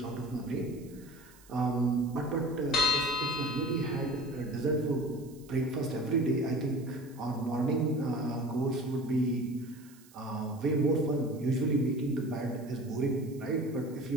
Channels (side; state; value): right; noise; hiss, 25 dB below the sound